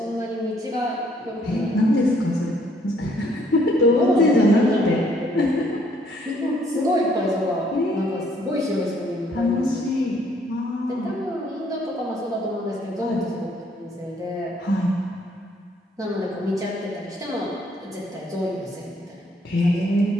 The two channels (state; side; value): normal; both; correlation 0.66